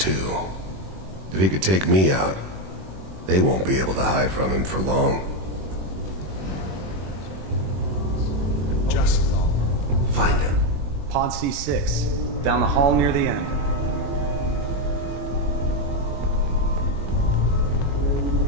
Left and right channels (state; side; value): late; left; 21 ms